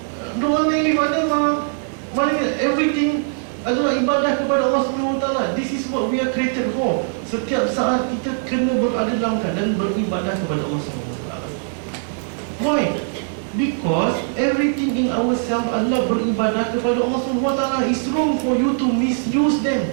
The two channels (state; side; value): silent; left; digital silence